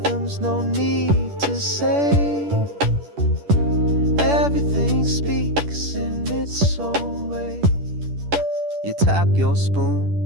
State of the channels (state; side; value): late; left; 10 ms